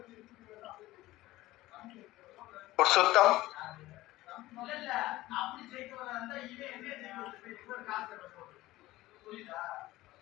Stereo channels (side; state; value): right; quieter; 17.4 dB